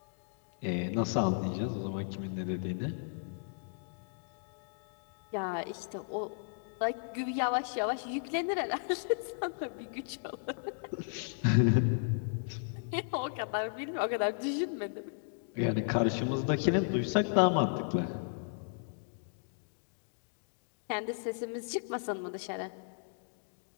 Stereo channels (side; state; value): right; silent; digital silence